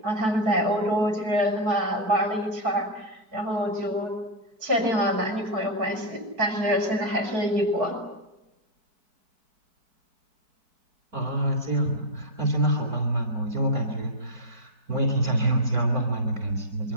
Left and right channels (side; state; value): left; late; 4.6 ms